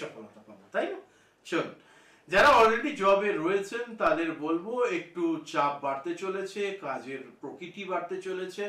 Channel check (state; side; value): identical; both; correlation 1.00